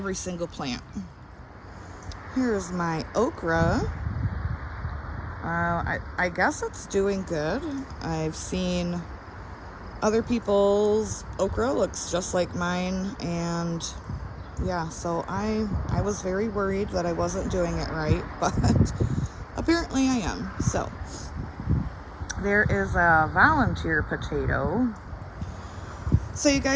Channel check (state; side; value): identical; both; correlation 1.00